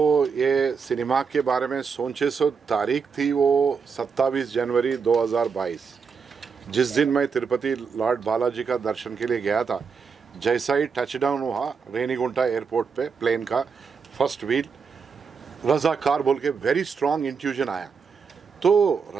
ये सिनेमा के बारे में सोचे सो तारीख थी वो 27 जनवरी 2022, जिस दिन मैं तिरुपति लॉर्ड बालाजी का दर्शन के लिए गया था। जैसा ही टचडाउन हुआ रेनीगुंटा एयरपोर्ट पे प्लेन का फर्स्ट व्हील, रजाकार बोल के वेरी स्ट्रॉन्ग इंट्यूजन आया। तो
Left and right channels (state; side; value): quieter; left; 5.7 dB